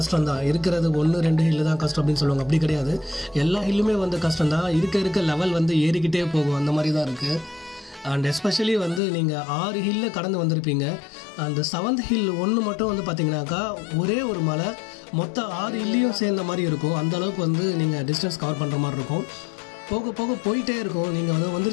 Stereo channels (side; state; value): right; drops out; at 9.0 s